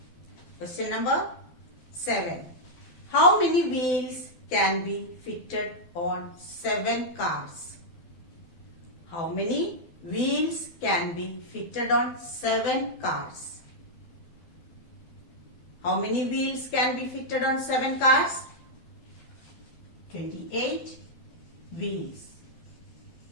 Question number 7. How many wheels can be fitted on 7 cars? How many wheels can be fitted on 7 cars? How many wheels can be fitted on 7 cars? 28 wheels.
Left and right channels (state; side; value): late; right; 12 ms